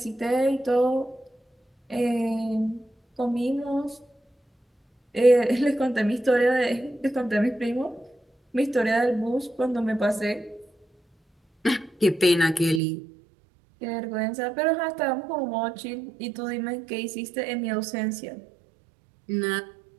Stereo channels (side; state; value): left; drops out; at 12.8 s